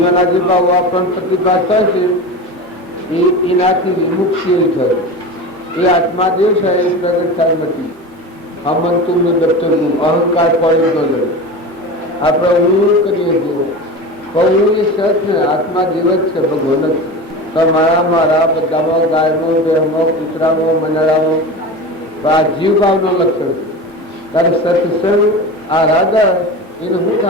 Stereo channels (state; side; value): normal; both; correlation 0.28